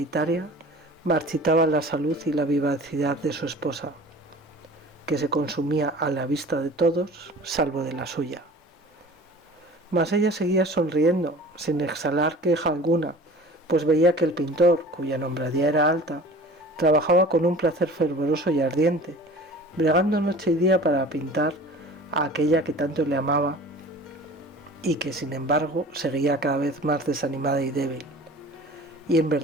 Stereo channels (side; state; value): both; normal; correlation 0.43